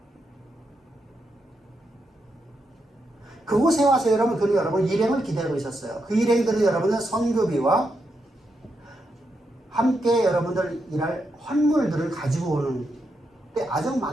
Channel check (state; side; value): normal; both; correlation 0.83